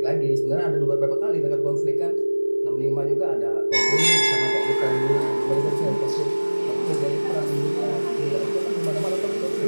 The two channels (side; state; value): both; inverted; correlation -1.00